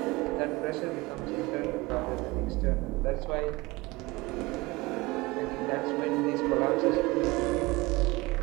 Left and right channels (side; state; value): left; quieter; 22.3 dB